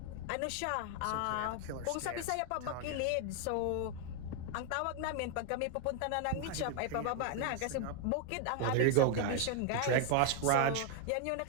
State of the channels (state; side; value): different; both; correlation 0.01